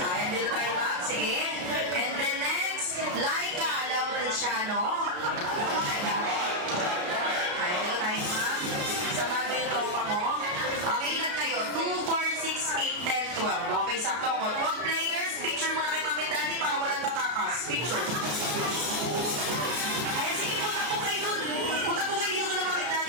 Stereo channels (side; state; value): left; late; 33 ms